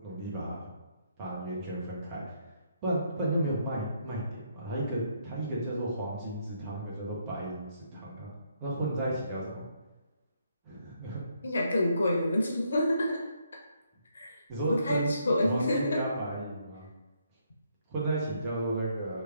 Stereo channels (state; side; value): inverted; both; correlation -0.72